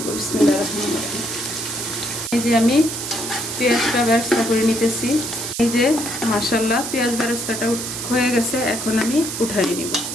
বিসমিল্লাহির রহমানির রহিম। এই যে আমি পেঁয়াজটা বেরেস্তা করে নিতেছি। এই যে মাশাআল্লাহ পেঁয়াজ বেরেস্তাটা হয়ে গেছে, এখন আমি উঠাই নিব।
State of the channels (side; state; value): right; noise; hiss, 5 dB below the sound